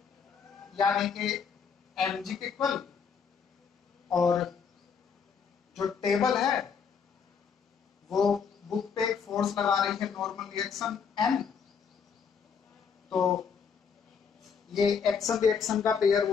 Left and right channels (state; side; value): quieter; right; 6.4 dB